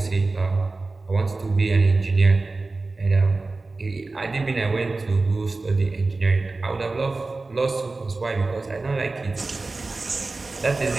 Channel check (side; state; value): left; quieter; 3.5 dB